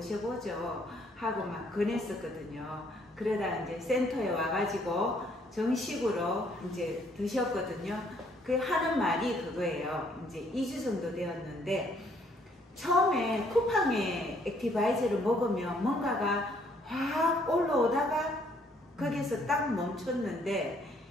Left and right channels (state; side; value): normal; both; correlation 0.66